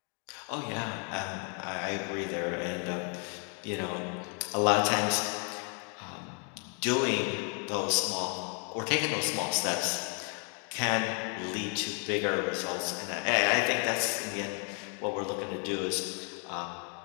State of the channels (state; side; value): quieter; right; 39.6 dB